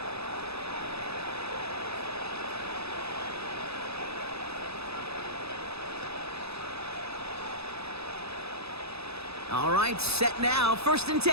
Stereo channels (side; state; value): left; late; 0.79 ms